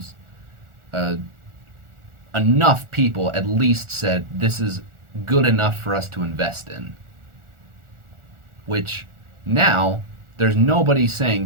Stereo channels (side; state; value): left; late; 1.4 ms